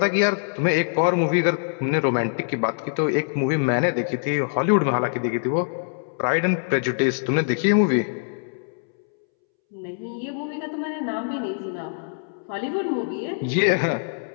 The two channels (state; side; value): silent; right; 63 dB below the other